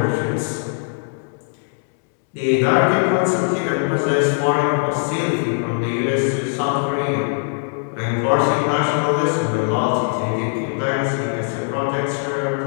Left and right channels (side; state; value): right; silent; digital silence